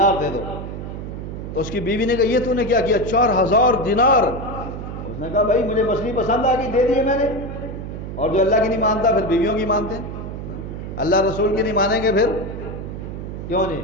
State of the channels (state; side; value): noise; right; hum, 8 dB below the sound